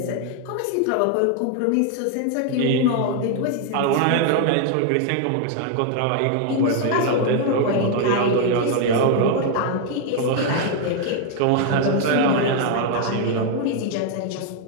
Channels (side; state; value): both; different; correlation 0.00